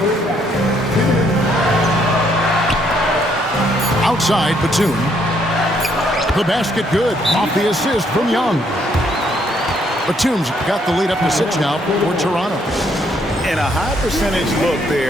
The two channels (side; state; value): both; normal; correlation 0.70